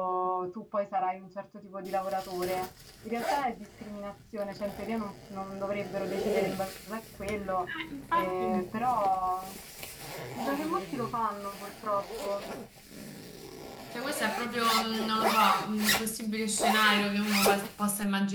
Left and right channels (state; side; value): identical; both; correlation 1.00